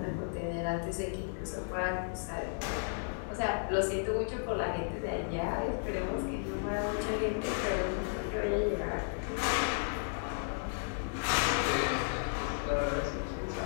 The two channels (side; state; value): right; silent; digital silence